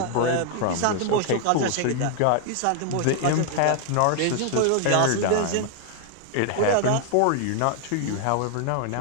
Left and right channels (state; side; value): different; both; correlation 0.00